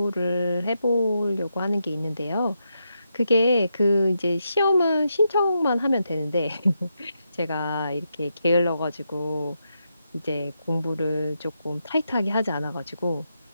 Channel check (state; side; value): inverted; both; correlation -0.83